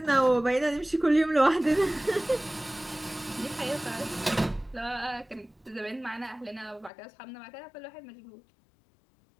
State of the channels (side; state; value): right; drops out; at 6.9 s